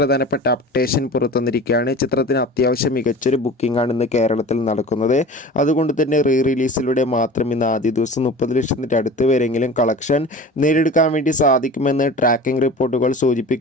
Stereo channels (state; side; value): normal; both; correlation 0.38